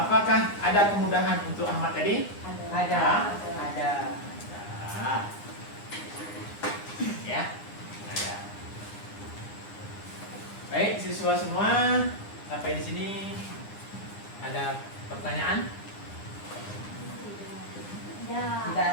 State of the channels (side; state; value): right; late; 9.8 ms